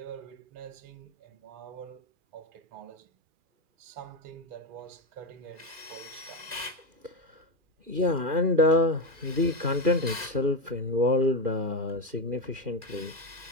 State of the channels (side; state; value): left; late; 2.4 ms